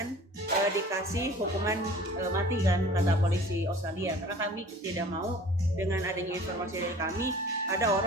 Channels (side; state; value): both; normal; correlation 0.46